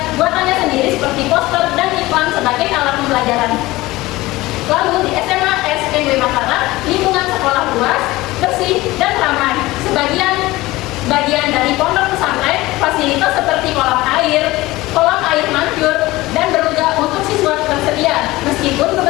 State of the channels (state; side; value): quieter; right; 19.1 dB